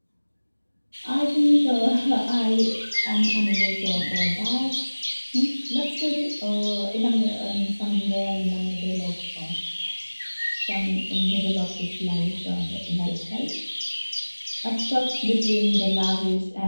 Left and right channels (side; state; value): both; inverted; correlation -1.00